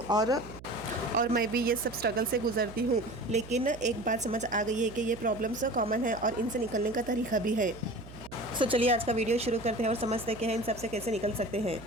और मैं भी ये सब स्ट्रगल से गुजरती हूँ। लेकिन एक बात समझ आ गई है कि ये प्रॉब्लम्स कॉमन है और इनसे निकलने का तरीका भी है। चलिए आज का वीडियो शुरू करते हैं और समझते हैं कि इन सब से कैसे निकल सकते हैं।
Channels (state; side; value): noise; right; hum, 16 dB below the sound